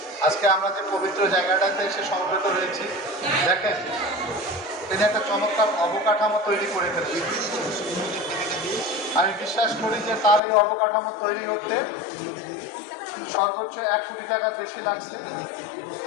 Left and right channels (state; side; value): drops out; right; at 10.4 s